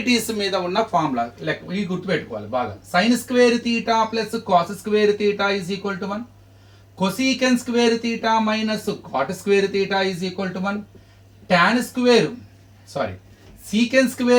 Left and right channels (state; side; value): identical; both; correlation 1.00